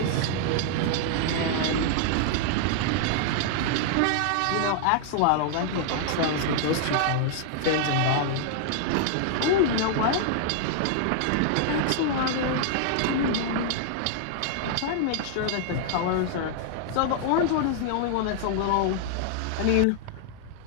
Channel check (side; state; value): both; different; correlation -0.01